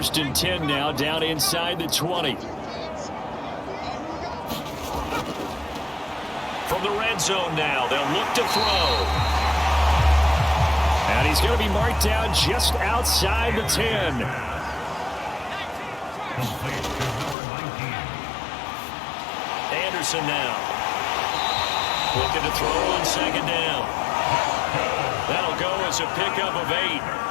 and 10 now, down inside the 20. From the red zone now, they'll look to throw. And he's going to be marked down just outside the 10. Anderson now. Looking to throw on 2nd down. That'll go as a pickup of 8.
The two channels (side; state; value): right; drops out; at 17.4 s